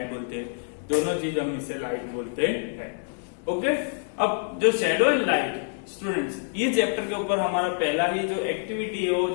बोलते हैं। दोनों चीज हम इसे लाइट बोलते हैं। ओके, अब जो शेडो एंड लाइट स्टूडेंट्स, ये चैप्टर के ऊपर हमारा पहला ही जो एक्टिविटी है, वो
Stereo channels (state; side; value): silent; right; digital silence